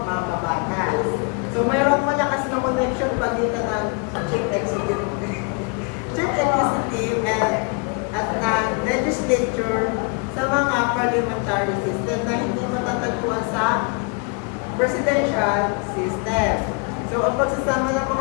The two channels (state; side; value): quieter; right; 33.3 dB